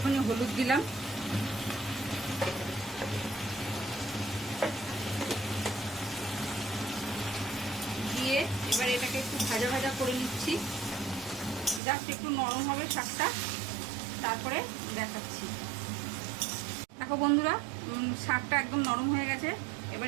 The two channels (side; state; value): left; drops out; at 11.8 s